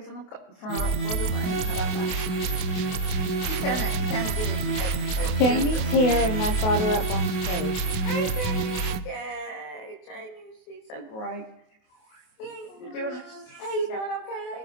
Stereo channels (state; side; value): late; right; 28 ms